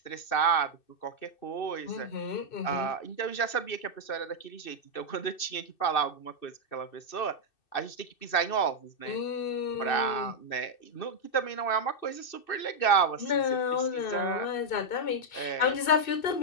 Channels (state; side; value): late; right; 2.6 ms